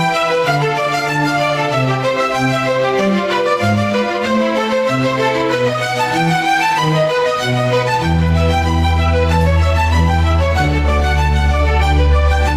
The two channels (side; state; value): both; identical; correlation 1.00